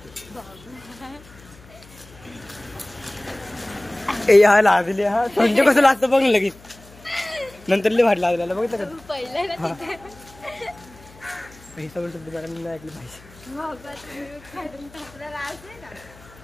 हा लाजले. हा संजय कसं लागतं बघ लगेच. नंतर लय भारी लागलेला बघितलं का? पहिलं ना तिथे हे सगळं शब्द मॅडम नाही ऐकलं पाहिजे. बाबा तुम्ही काढून टाकला राज आहे ना.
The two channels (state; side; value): noise; left; hum, 23 dB below the sound